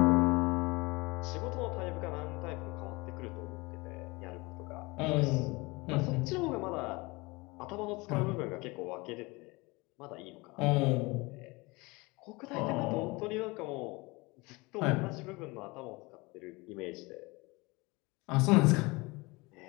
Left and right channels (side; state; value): right; quieter; 24.6 dB